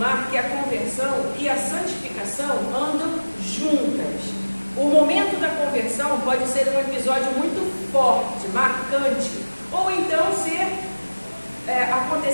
que a conversão e a santificação andam juntas. O momento da conversão pode ser um episódio muito forte, marcante, ou então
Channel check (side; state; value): both; inverted; correlation -1.00